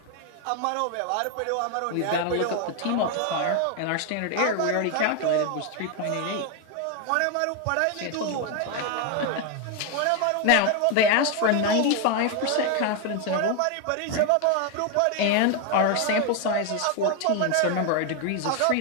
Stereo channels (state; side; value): different; both; correlation 0.01